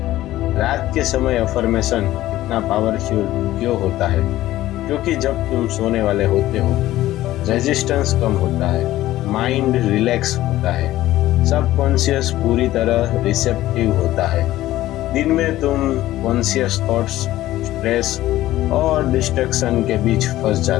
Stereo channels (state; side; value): quieter; right; 15.2 dB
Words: रात के समय अफर्मेशन इतना पावरफुल क्यों होता है? क्योंकि जब तुम सोने वाले होते हो रेजिस्टेंस कम होता है, माइंड रिलैक्स होता है, सबकॉन्शियस पूरी तरह रिसेप्टिव होता है। दिन में तुम कॉन्शियस थॉट्स, स्ट्रेस और डिस्ट्रैक्शन के बीच फंस